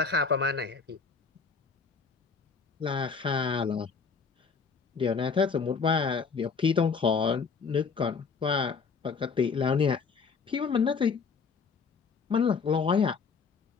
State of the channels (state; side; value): quieter; right; 5.4 dB